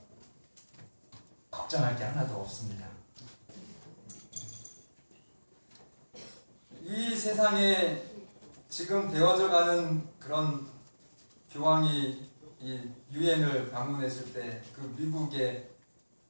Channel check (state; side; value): inverted; both; correlation -1.00